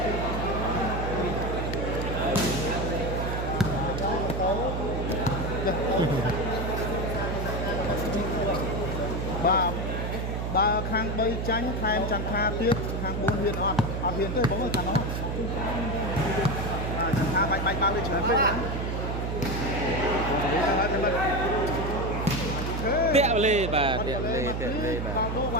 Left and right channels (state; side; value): noise; right; hum, 2 dB below the sound